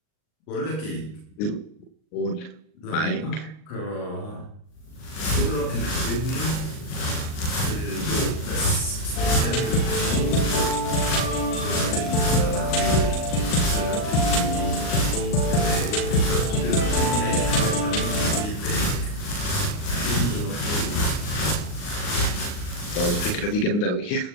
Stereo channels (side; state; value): right; late; 39 ms